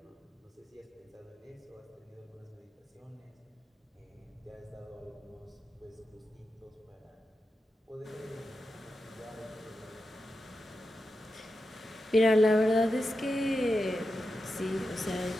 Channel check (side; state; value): both; normal; correlation 0.89